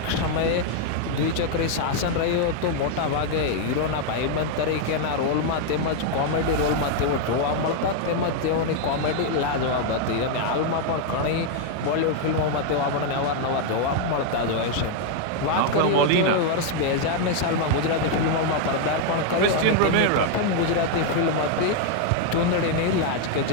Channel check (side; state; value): both; different; correlation 0.00